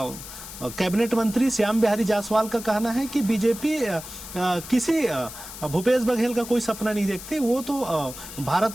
कैबिनेट मंत्री श्याम बिहारी जायसवाल का कहना है कि बीजेपी किसी भूपेश बघेल का कोई सपना नहीं देखती। वो तो भारत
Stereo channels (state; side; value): noise; left; hiss, 12 dB below the sound